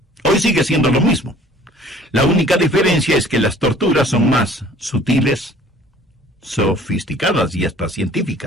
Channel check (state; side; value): normal; both; correlation 0.52